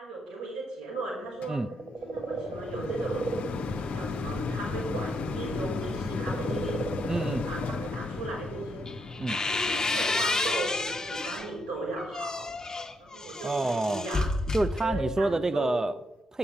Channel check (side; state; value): both; normal; correlation 0.78